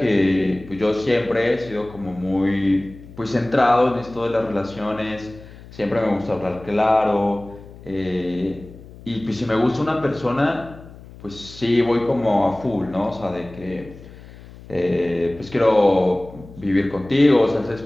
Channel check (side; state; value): left; noise; hum, 19 dB below the sound